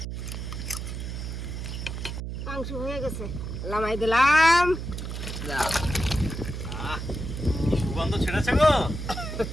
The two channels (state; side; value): noise; right; hum, 6 dB below the sound